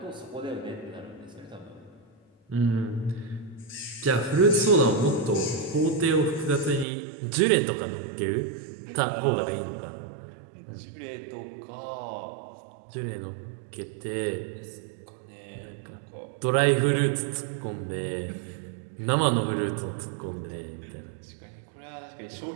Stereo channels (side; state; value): left; drops out; at 6.9 s